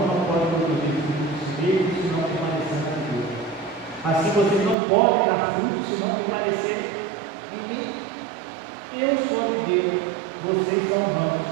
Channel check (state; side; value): drops out; left; at 4.8 s